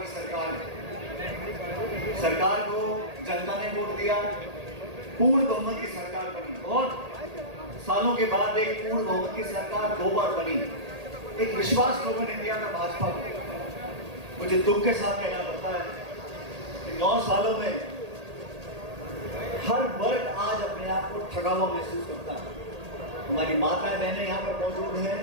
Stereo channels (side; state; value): left; late; 1.8 ms